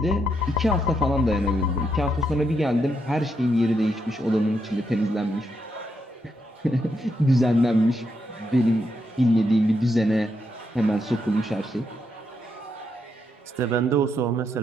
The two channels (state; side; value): normal; both; correlation 0.80